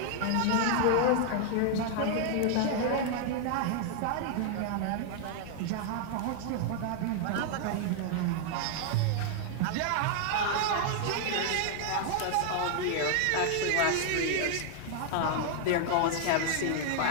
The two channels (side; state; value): both; different; correlation 0.00